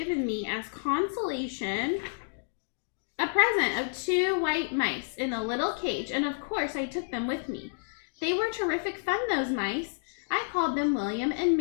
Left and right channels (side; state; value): right; silent; digital silence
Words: me as consolation a present of 2 white mice in a little cage, and of course I took them with me. They were terrific fun, those mice. I called them William and